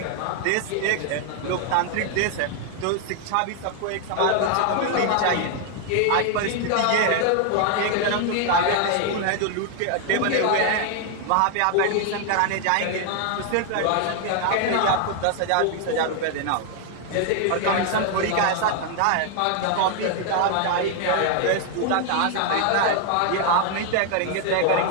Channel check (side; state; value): both; different; correlation 0.00